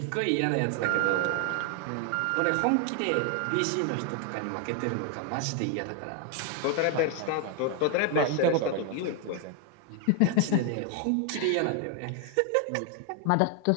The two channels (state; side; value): different; both; correlation 0.00